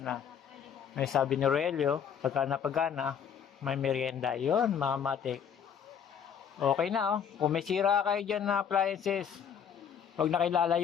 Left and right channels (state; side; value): quieter; right; 7.9 dB